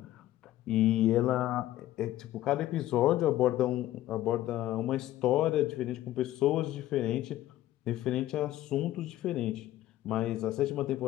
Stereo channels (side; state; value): right; quieter; 14.4 dB